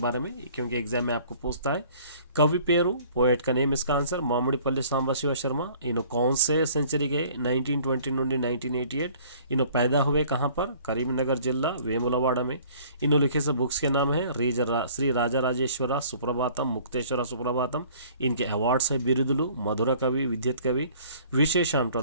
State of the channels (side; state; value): both; inverted; correlation -0.53